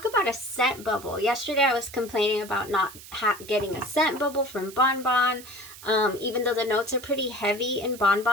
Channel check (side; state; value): right; noise; hiss, 17 dB below the sound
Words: about a scent bubble. Yesterday I was complaining about not getting a scent bubble from Bon Bon. Even though the notes are pretty heavy in Bon